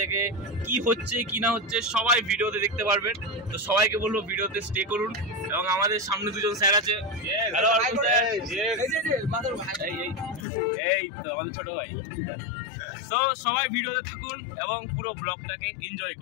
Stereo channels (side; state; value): right; drops out; at 10.5 s